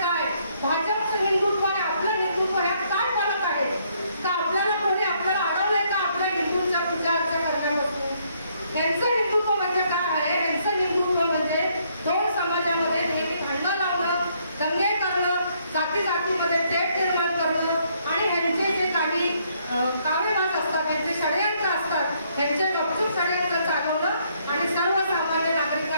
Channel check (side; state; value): both; inverted; correlation -0.70